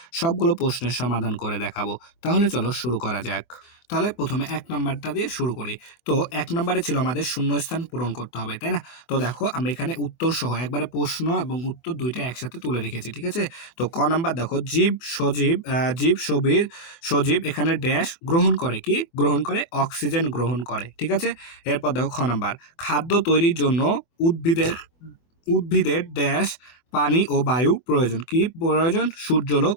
সবগুলো প্রশ্নের সমাধান করে দেখাবো। তাহলে চলো শুরু করা যাক। তাহলে প্রথমে 1 নাম্বারটা দিয়ে শুরু করি। তো 1 নাম্বারে ছিল আমাদের শূন্যস্থান পূরণ করতে হবে, তাই না? তো দেখো আমি এখানে উত্তর সহ একবারে প্রশ্ন এবং উত্তর দুইটা একসাথে তুলে রেখেছি, ঠিক আছে? তো ক নাম্বার দেখো সজীব এখানে ড্যাশ গ্রহণ করে, কি গ্রহণ করে? অক্সিজেন গ্রহণ করে, ঠিক আছে? এরপর দেখো খ নাম্বার, খাদ্য তৈরির জন্য উদ্ভিদের উদ্ভিদের ড্যাশ পানি ও বায়ু প্রয়োজন, কি প্রয়োজন? সূর্যালোক,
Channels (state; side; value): late; right; 24 ms